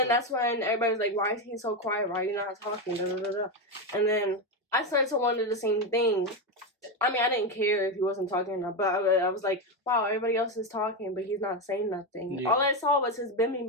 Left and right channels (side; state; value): both; normal; correlation 0.11